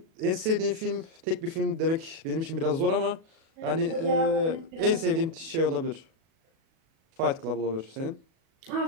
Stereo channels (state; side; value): late; left; 37 ms